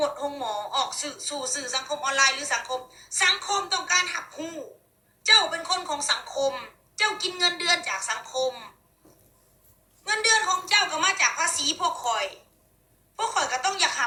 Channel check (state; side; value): identical; both; correlation 1.00